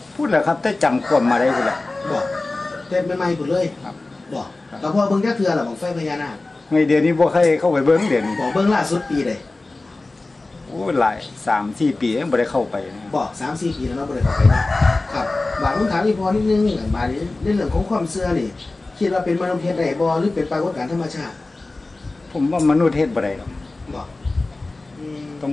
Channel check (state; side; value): quieter; right; 3.2 dB